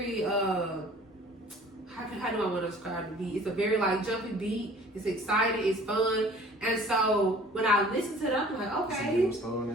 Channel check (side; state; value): both; normal; correlation 0.50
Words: how do I want to describe the beat? It's a very like jumpy beat. It's exciting. It's fun. And so when I listen to it, I'm like, okay,